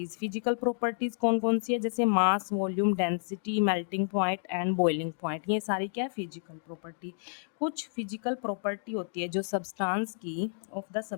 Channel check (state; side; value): silent; right; digital silence